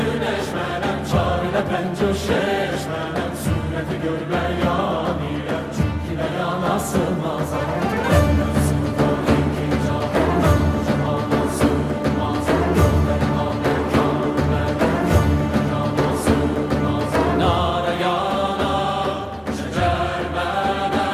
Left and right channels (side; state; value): both; identical; correlation 1.00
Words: menem, çarine pençe şeşmenem, sureti görmeyan ile, çünkü beyana sığmazam.